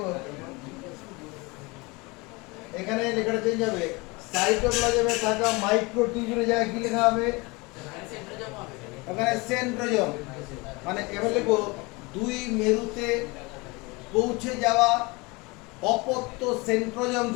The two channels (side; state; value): right; quieter; 25.7 dB